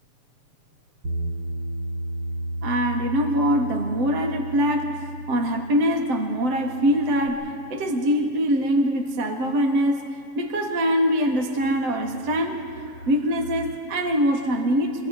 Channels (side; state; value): left; late; 7.7 ms